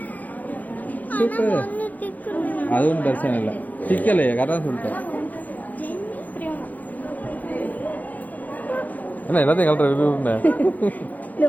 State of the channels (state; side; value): late; right; 0.080 ms